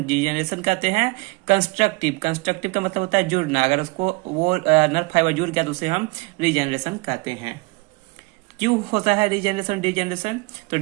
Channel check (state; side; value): quieter; left; 26.4 dB